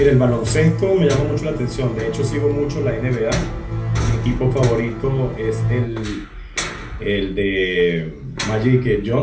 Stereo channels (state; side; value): identical; both; correlation 1.00